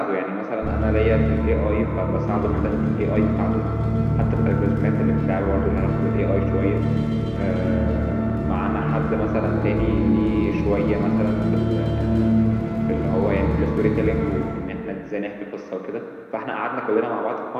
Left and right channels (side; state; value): both; identical; correlation 1.00